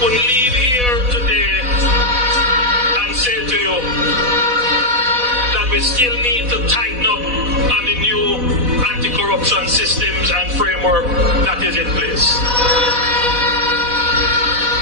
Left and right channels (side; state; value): left; late; 4.1 ms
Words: leave here today and say to you that we still need to tighten up on the new anti-corruption systems and framework that is in place.